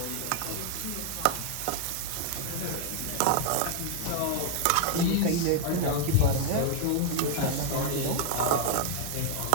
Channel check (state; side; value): different; both; correlation 0.00